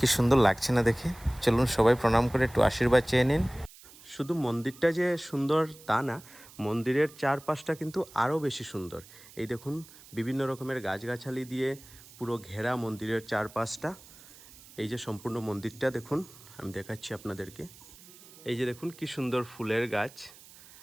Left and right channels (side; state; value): right; noise; hiss, 21 dB below the sound